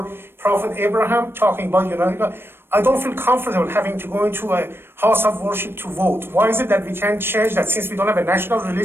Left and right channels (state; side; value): late; left; 0.11 ms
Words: Prophet Abraham, talking about I don't feel comfortable having to go into a house of worship to vote. Why is it that we can't change that since we don't have a national